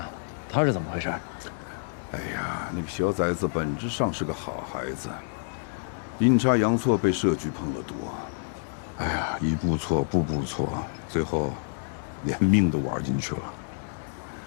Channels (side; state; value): right; silent; digital silence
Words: 他是怎么回事？哎呀，那个小崽子本质上是个好孩子，阴差阳错被社局碰了毒。哎呀，一步错，步步错，最后连命都玩进去了。